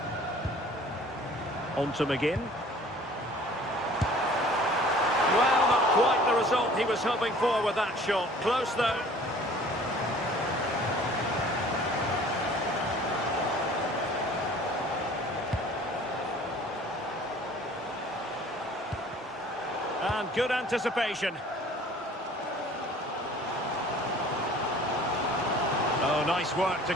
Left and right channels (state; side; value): normal; both; correlation 0.50